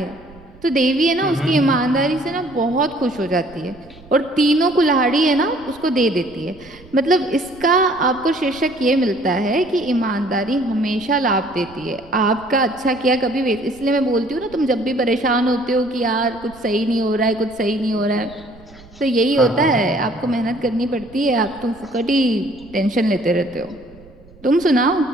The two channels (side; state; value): right; noise; rumble, 24 dB below the sound